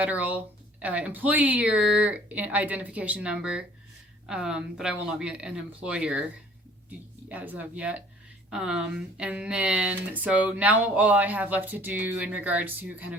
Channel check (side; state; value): both; normal; correlation 0.53